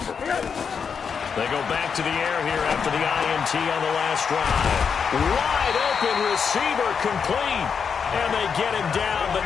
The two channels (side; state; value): right; quieter; 6.4 dB